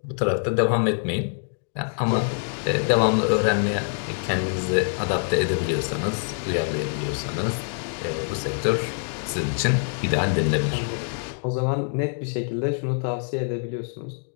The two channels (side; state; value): right; silent; 62 dB below the other